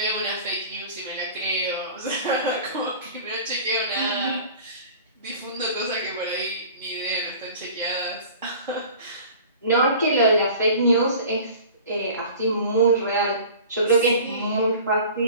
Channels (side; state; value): both; inverted; correlation -0.42